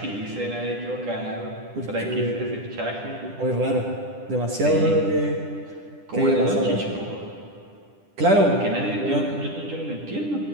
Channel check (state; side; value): late; left; 10 ms